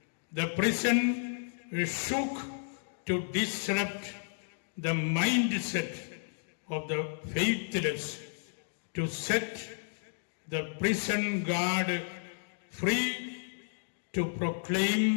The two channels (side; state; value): right; silent; digital silence